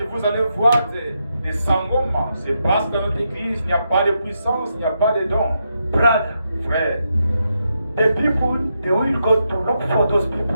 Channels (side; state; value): both; inverted; correlation -0.83